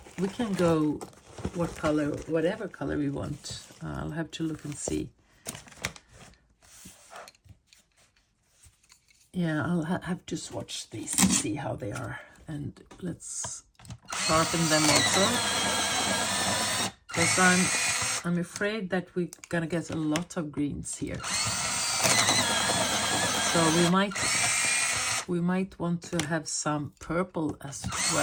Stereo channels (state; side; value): identical; both; correlation 1.00